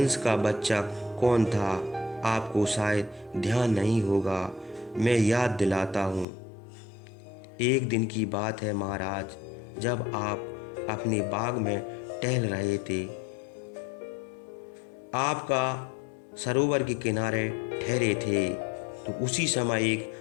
का बच्चा कौन था? आपको शायद ध्यान नहीं होगा, मैं याद दिलाता हूँ। एक दिन की बात है महाराज, जब आप अपने बाग में टहल रहे थे। आपका सरोवर के किनारे ठहरे थे तो उसी समय एक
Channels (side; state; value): right; drops out; at 6.2 s